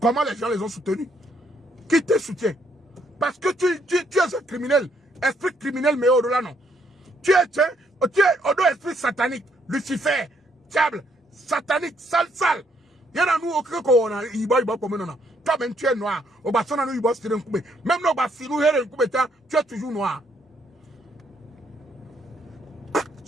les gens les ont soutenus? Qui te soutient? Parce que tu es un criminel. Esprit criminel, mais au-delà, non. Tu es au dos esprit satanique. Lucifer, diable. Satanique, sale. Il y en a nous au cœur qu'on a, il va comme non. Toi-même, tu es noir. Au bassin, nous, il va se tirer un coup. Même nos bassins, nous, tu es toujours noir.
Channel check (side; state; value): both; normal; correlation 0.71